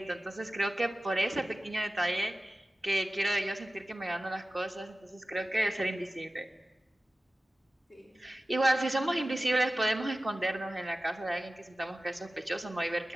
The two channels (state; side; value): normal; both; correlation 0.96